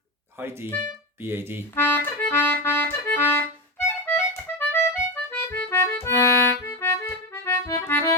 high D B A D.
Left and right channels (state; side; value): normal; both; correlation 0.17